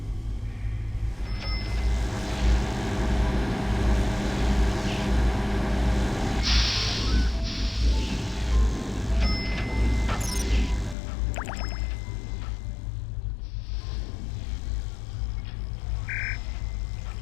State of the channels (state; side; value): drops out; right; at 11.0 s